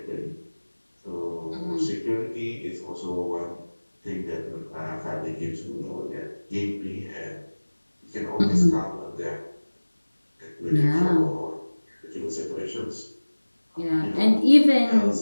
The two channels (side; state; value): both; inverted; correlation -1.00